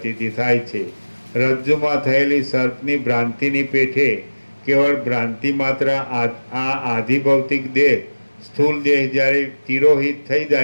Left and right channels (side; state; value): both; inverted; correlation -1.00